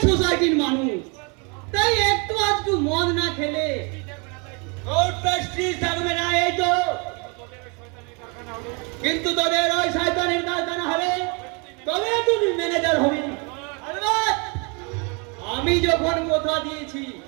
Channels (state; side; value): quieter; left; 32.9 dB